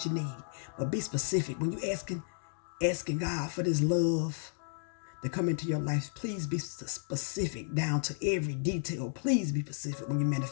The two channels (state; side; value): silent; right; digital silence